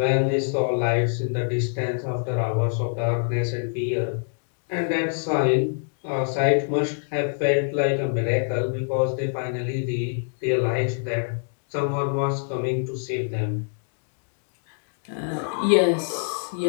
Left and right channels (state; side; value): silent; right; digital silence